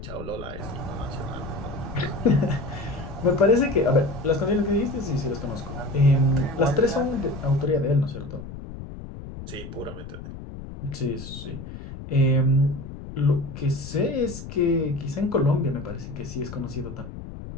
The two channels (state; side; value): noise; left; rumble, 11 dB below the sound